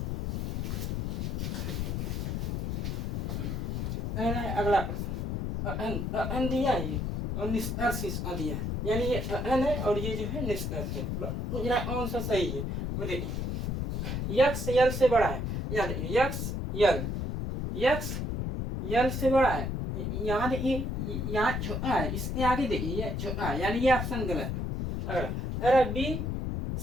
अगला प्रश्न अन दिया है और निष्कर्ष इसका दिया है, यानी ये अन है और ये जो है निष्कर्ष है, मुझे कौन सा सही है वो देखिए। यक्स यल से बड़ा है, याद यक्स यक्स यल से बड़ा है, यहाँ देखिए यहाँ छोटा है, इसके आगे देखिए ये छोटा है, यानी ये ऑप्शन गलत है। अगला बी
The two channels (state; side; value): noise; left; rumble, 1 dB below the sound